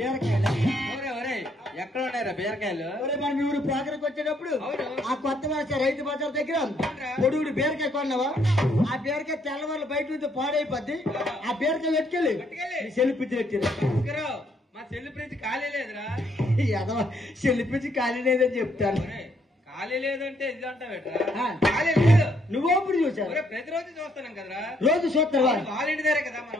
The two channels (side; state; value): both; normal; correlation 0.70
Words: ఎక్కడ ఉన్నారా బీరకాయలు మన మీ ఊరు ప్రోగ్రాంకి వచ్చేటప్పుడు ఆ కొత్త వలస రైతు బజార్ దగ్గర పొడుగుడు బీరకాయ కొన్నావా ఆ బీరకాయ తెల్లవాళ్ళు బయట నుంచి పాడైపోద్ది ఆ బీరకాయ పెట్టుకెళ్ళి సెల్లిపించి పెట్టారు మా సెల్లిపించి ఖాళీ లేదురా సెల్లిపించి ఖాళీ లేదని చెప్తాను ఖాళీ లేదంటే ఇది అంటావేట్రా ఖాళీ లేదు నువ్వు అప్పుడు చూసావు ప్రతిరోజు చూస్తున్నాం కదరా రోజు చూస్తావా వాళ్ళ ఇంటి దగ్గర కదా